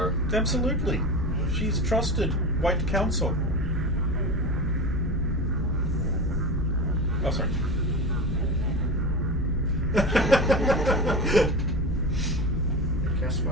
Absolutely. She's trusted White Council. Oh, sorry. Cast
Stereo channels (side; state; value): both; normal; correlation 0.26